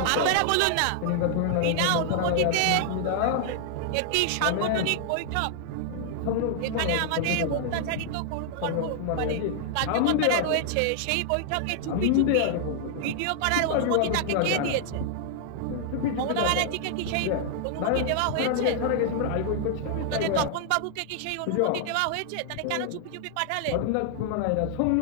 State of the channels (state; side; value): different; both; correlation -0.01